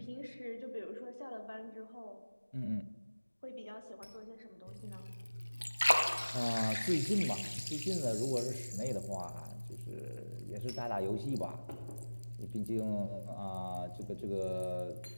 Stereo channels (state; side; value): inverted; both; correlation -1.00